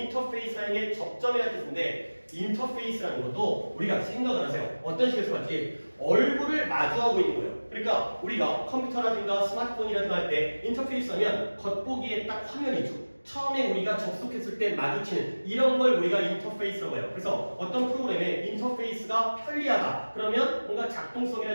사용의 접점이라는 뜻인데, 인터페이스라는 것도 우리가 생각을 하세요. 어떤 식으로 할지 얼굴을 마주하고 있는 거예요. 그러니까 우리가 컴퓨터라든가 스마트폰이라든가 할 때 인터페이스 하면 겉보기에 딱 화면이 있죠. 처음에 우리가 접속했을 때 마주치는 이런 걸 우리가 인터페이스라고 해요. 그래서 어떤 프로그램에 인터페이스가 편리하다. 그러면 뭔가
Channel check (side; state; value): both; inverted; correlation -1.00